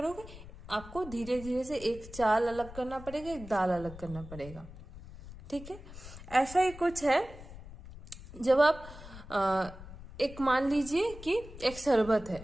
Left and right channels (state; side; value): noise; left; rumble, 15 dB below the sound